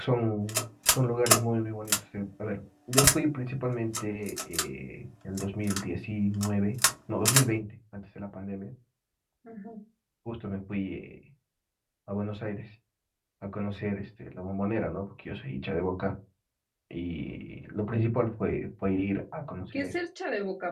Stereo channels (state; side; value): identical; both; correlation 1.00